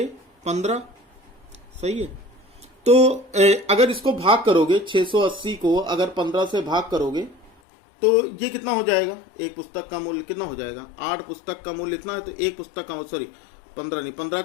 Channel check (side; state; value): right; drops out; at 7.5 s